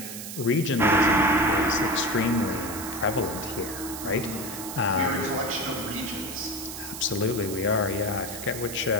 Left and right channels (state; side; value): noise; right; hiss, 9 dB below the sound